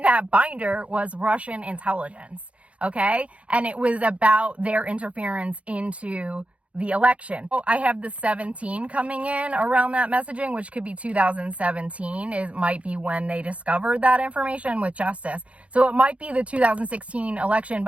that binder was Russian intelligence, okay, and it was about their interference into the election. Oh, I have the 17 coming in around that messaging, which could be 2017. It might be when they discovered that information with justice. So it might be the 2016 election,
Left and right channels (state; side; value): late; left; 0.063 ms